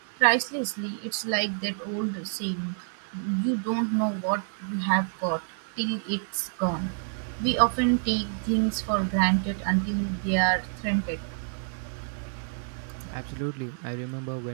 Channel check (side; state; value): left; silent; digital silence